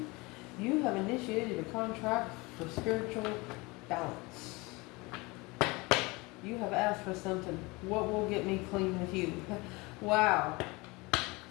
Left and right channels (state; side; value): quieter; right; 24.7 dB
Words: You have initiated a contract for spiritual balance. You have asked for something. What will get me clean with you? Wow.